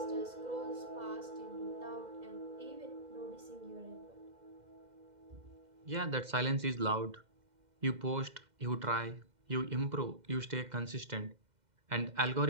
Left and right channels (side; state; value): left; late; 2.1 ms